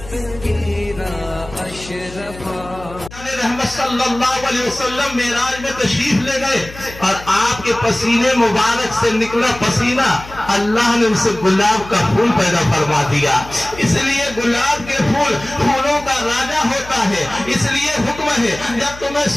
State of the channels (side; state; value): left; noise; hum, 16 dB below the sound